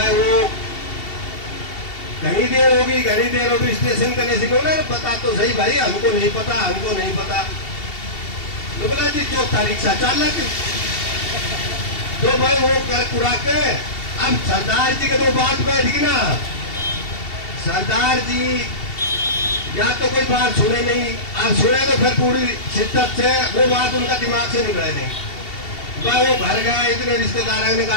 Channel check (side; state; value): right; late; 2.7 ms